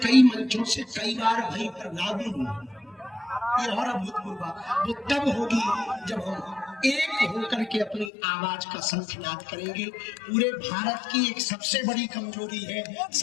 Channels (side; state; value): right; drops out; at 8.1 s